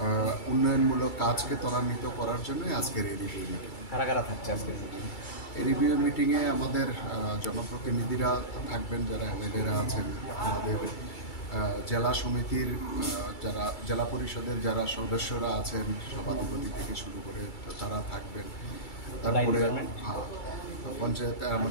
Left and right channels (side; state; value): right; late; 2.3 ms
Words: উন্নয়নমূলক কাজকে ত্বরান্বিত করার জন্যই আজকের এই রিভিউ মিটিং। কারা কারা থাকছে আজকে এই রিভিউ মিটিংয়ে? আমাদের জনপ্রতিনিধিরা থাকবেন, যারা এমএলএরা আছেন, আমাদের জেলা সমিতির যারা জেলা পরিষদের যারা সদস্যরা আছেন, সভাধিপতি থেকে শুরু করে তারা থাকবেন। তারপরে পঞ্চায়েত